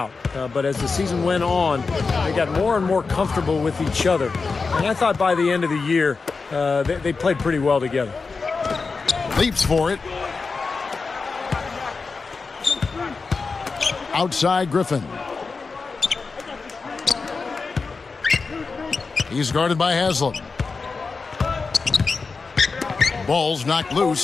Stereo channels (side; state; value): right; quieter; 4.5 dB